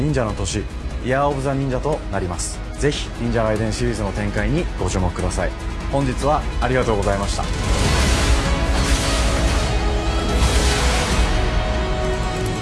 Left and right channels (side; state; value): both; identical; correlation 1.00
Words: 者の年、イヤーオブザ忍者となります。ぜひ忍者ガイデンシリーズの展開にご注目ください。本日はありがとうございました。